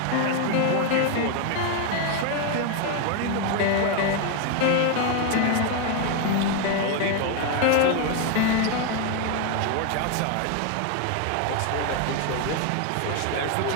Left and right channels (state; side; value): different; both; correlation 0.01